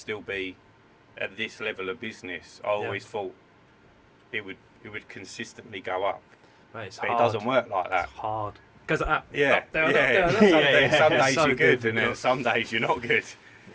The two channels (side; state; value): both; identical; correlation 1.00